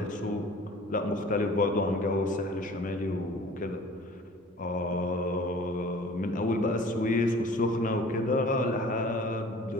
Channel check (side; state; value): both; normal; correlation 0.47